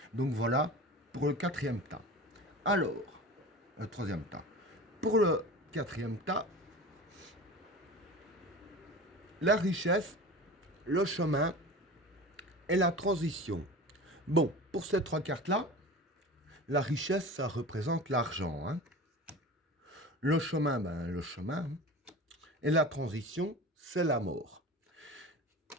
Donc voilà pour le quatrième tas. Alors, le troisième tas. Pour le quatrième tas, la richesse, le chemin et la transition. Bon, pour ces trois cartes-là, la richesse, ça représente l'argent. Hein. Le chemin, ben, le chemin. Et la transition, c'est la mort.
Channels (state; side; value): normal; both; correlation 0.34